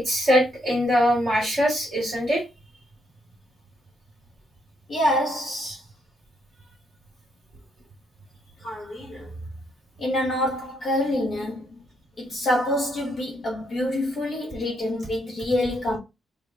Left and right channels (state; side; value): normal; both; correlation 0.75